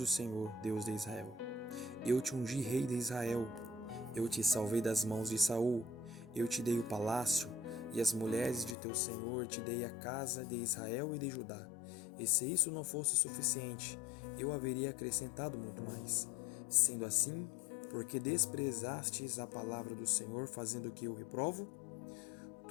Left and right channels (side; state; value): right; drops out; at 8.8 s